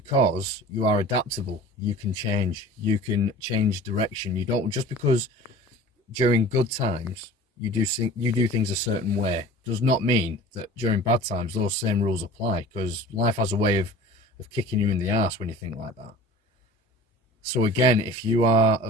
you are adaptable, you can change direction. You don't, just because during good times you do things a certain way, does not mean that during bad times those same rules apply, because life has a way of kicking you in the arse when you think like that. So again, if you are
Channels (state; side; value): normal; both; correlation 0.42